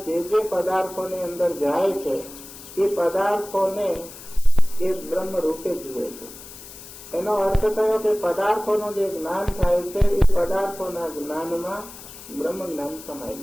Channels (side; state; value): left; noise; hiss, 16 dB below the sound